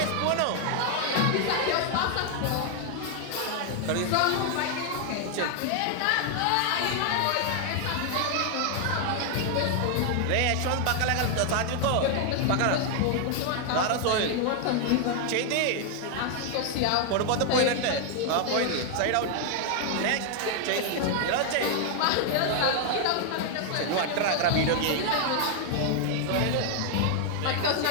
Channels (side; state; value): both; different; correlation 0.00